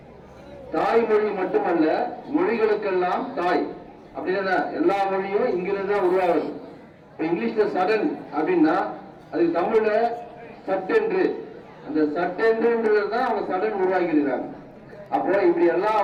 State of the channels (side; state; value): both; identical; correlation 1.00